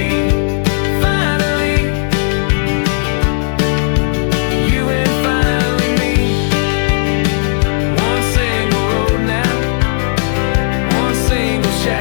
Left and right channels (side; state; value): right; silent; digital silence